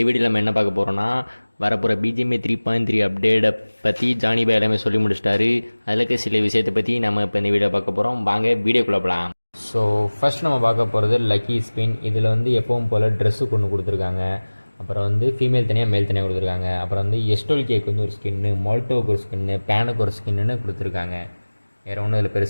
வீடியோவில் நம்ம என்ன பார்க்க போகிறோன்னா, வரப்போகிற பிஜிஎம்ஏ 3.3 அப்டேட்டை பற்றி ஜானி பாய் எல்லாமே சொல்லி முடிச்சிட்டாரு. அதில் இருக்க சில விஷயத்தை பற்றி நம்ம இப்போ இந்த வீடியோ பார்க்க போகிறோம். வாங்க வீடியோக்குள்ளே போகலாம். ஸோ ஃபர்ஸ்ட் நம்ம பார்க்க போகிறது லக்கி ஸ்பின். இதில் வந்து எப்பவும் போல் ட்ரெஸ்ஸு கொண்டு கொடுத்துருக்காங்க. அப்புறம் வந்து ஃபீமேல் தனியாக மேல் தனியாக கொடுத்துருக்காங்க. அப்புறம் வந்து எஸ்டோல் கேக்கு வந்து ஒரு ஸ்கின்னு, மால்டோவுக்கு ஒரு ஸ்கின்னு, பேனுக்கு ஒரு ஸ்கின்னு கொடுத்துருக்காங்க. வேறு ஒன்றும் இதில்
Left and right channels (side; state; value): both; inverted; correlation -1.00